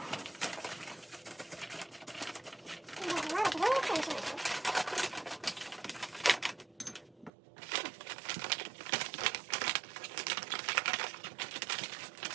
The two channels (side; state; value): left; drops out; at 7.3 s